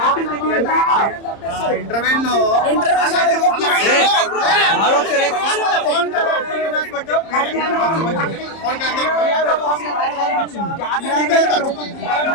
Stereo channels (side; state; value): right; late; 30 ms